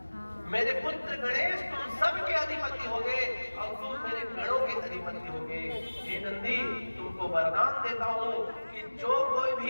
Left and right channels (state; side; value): inverted; both; correlation -1.00